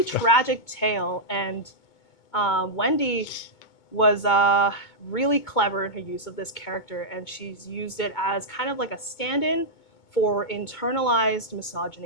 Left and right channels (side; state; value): right; late; 2.2 ms